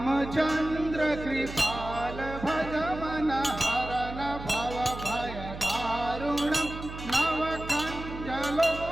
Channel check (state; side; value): noise; right; hum, 10 dB below the sound